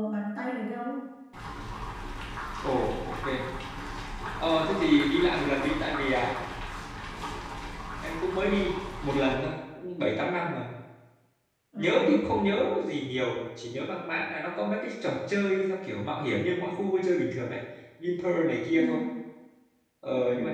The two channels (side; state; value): both; identical; correlation 1.00